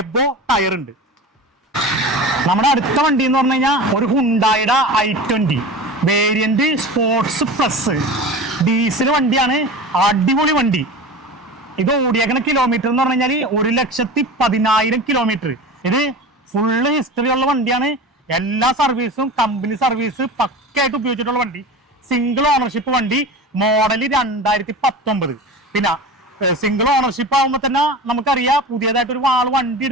എബോ ടയർ ഉണ്ട്. നമ്മുടെ അടുത്ത വണ്ടി എന്ന് പറഞ്ഞു കഴിഞ്ഞാൽ ഒരു ഹുണ്ടായുടെ i20 variant sports plus diesel വണ്ടിയാണ്. അടിപൊളി വണ്ടി. ഇത് ഓടിയേക്കുന്ന കിലോമീറ്റർ എന്ന് പറഞ്ഞു കഴിഞ്ഞാൽ 1,10,000 കിലോമീറ്റർ. ഇത് ഫുള്ള് ഹിസ്റ്ററി ഉള്ള വണ്ടിയാണ്. എല്ലാ സർവീസും കമ്പനി സർവീസ് പക്കയായിട്ട് ഉപയോഗിച്ചിട്ടുള്ള വണ്ടി. സിംഗിൾ ഓണർഷിപ്പ് വണ്ടി. മോഡൽ 2019. പിന്നെ സിംഗിൾ ഓണർഷിപ്പ് ആകുമ്പോൾ തന്നെ നമുക്കറിയാം, പുതിയതായിട്ട് ഒരു വണ്ടി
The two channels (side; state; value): both; normal; correlation 0.32